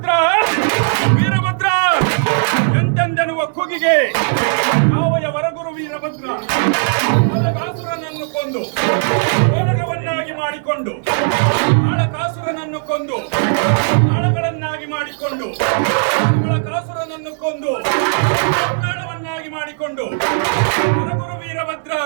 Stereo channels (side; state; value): left; silent; digital silence